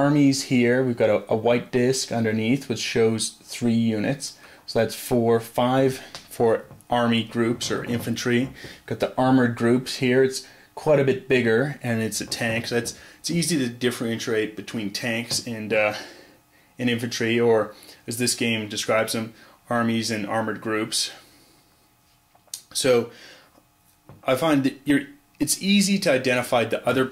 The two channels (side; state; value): both; identical; correlation 1.00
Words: here. We've got a white disc underneath, which shows 3 units. So that's 5 for army groups or infantry. Got the armored groups here. It's quite a bit bigger, and it's a tank. So it's easy to differentiate between tanks and infantry, or as this game describes them, armies and armored groups. So I find that it's easy to identify the other